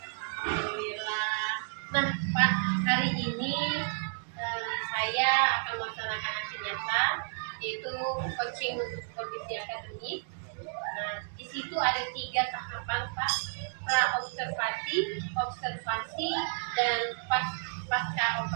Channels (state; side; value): silent; left; digital silence